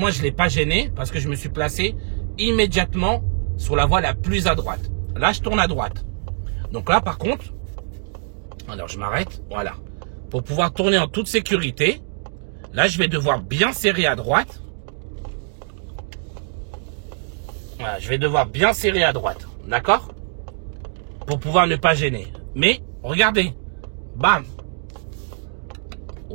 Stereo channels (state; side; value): silent; left; 56 dB below the other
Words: je ne l'ai pas gêné parce que je me suis placé immédiatement sur la voie la plus à droite. Là, je tourne à droite. Donc là, par contre, alors je m'arrête, voilà. Pour pouvoir tourner en toute sécurité, là, je vais devoir bien serrer à droite. Voilà, je vais devoir bien serrer à droite, d'accord? Pour pouvoir ne pas gêner. Mais, regardez, bam.